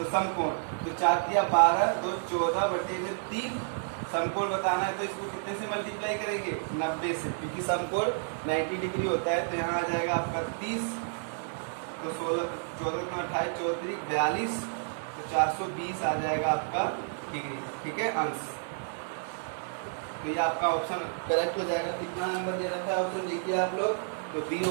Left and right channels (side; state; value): left; silent; digital silence